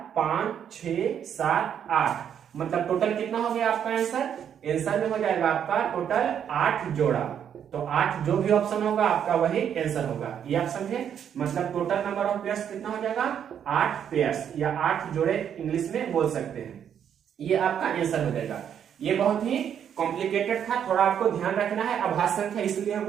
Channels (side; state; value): left; quieter; 8.8 dB